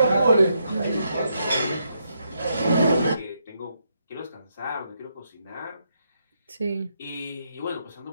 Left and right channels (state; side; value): inverted; both; correlation -0.79